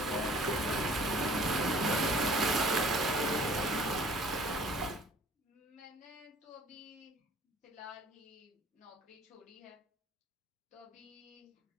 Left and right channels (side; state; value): both; normal; correlation 0.52